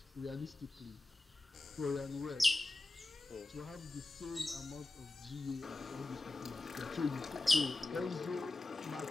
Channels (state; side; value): quieter; right; 3.0 dB